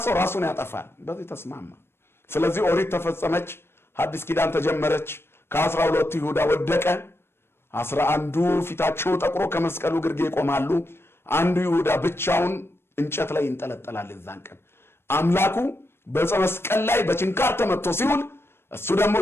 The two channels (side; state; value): right; late; 0.12 ms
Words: ሰው ራሱን ያጠፋል በዚህ ተስማማ ስለዚህ ኦሪት ተፈጸመች ሐዲስ ኪዳን ተጀመረች ከ12 ይሁዳ ወደቀ 11ዱ ፊታቸው ጠቁሮ ከመስቀሉ ግርጌ ይቆማሉ አንዱ ይሁዳ ብቻውን እንጨት ላይ ይንጠለጠላል እዛን ቀን አምላኩ በመስቀል ላይ በችንካር ተመቶ ሲውል እሱ ደግሞ